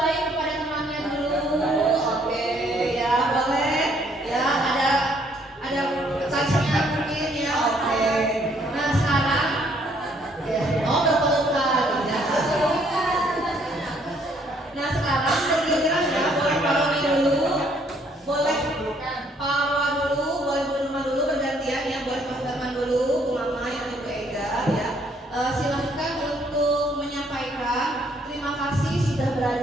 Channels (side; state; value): both; normal; correlation 0.66